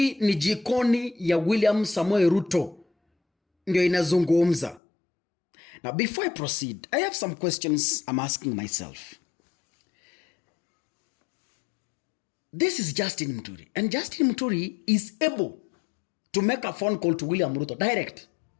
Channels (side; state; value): right; drops out; at 4.8 s